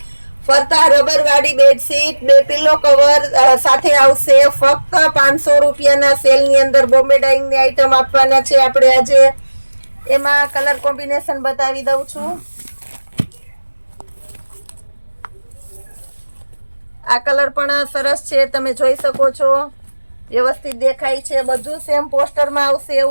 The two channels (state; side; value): inverted; both; correlation -1.00